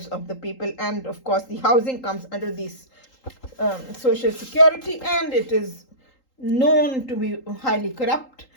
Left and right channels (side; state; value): right; late; 3.8 ms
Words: of the people. And of course, the housing comes under this Social Security, and it is known to be highly corrupt.